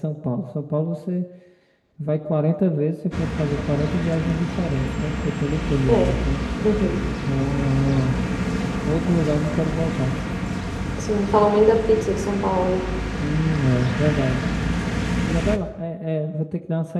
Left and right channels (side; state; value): both; identical; correlation 1.00